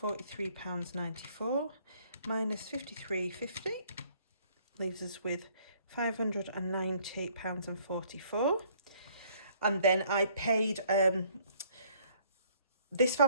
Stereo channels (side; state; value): both; inverted; correlation -0.62